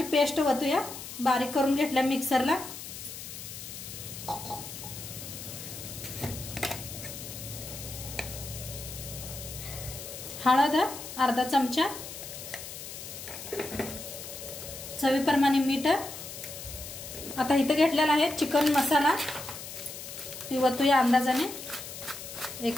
पेस्ट वतूया, बारीक करून घेतल्या मिक्सरला। हळद अर्धा चमचा, चवीप्रमाणे मीठ। आता इथं घेतलेला आहे चिकन मसाला, ती वतूया अंदाजाने 1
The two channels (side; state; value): left; noise; hiss, 10 dB below the sound